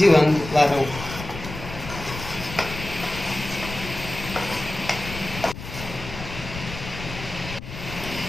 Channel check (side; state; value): left; noise; rumble, 10 dB below the sound